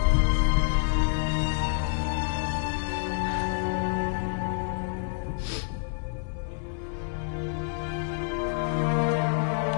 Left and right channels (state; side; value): silent; right; digital silence